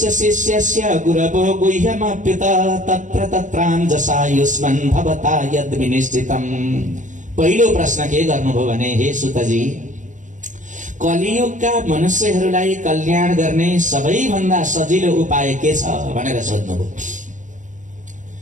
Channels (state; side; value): late; left; 0.36 ms